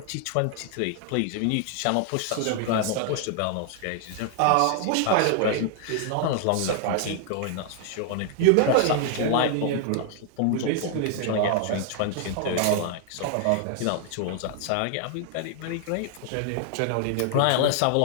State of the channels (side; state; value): both; different; correlation 0.00